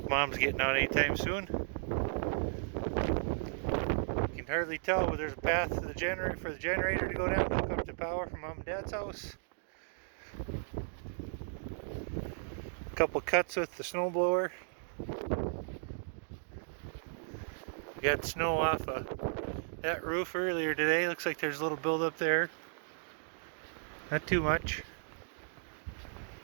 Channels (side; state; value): left; silent; digital silence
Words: Mom's getting out anytime soon. You can hardly tell, but there's a path to the generator to go down to hook up the power from Mom and Dad's house. A couple cuts with the snow blower. We got snow off of that roof earlier today. Looks like there's a little buildup there. Not too much.